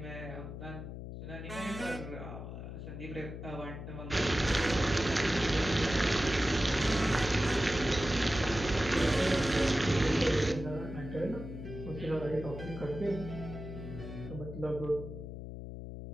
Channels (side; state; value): left; noise; hum, 9 dB below the sound